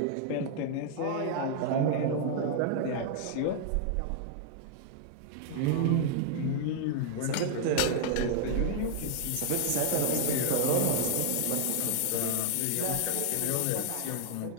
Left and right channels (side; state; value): both; different; correlation -0.01